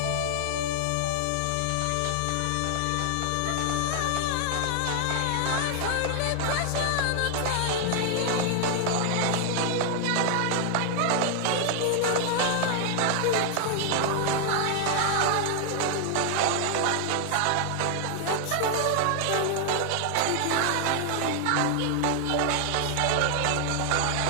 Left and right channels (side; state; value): both; different; correlation 0.00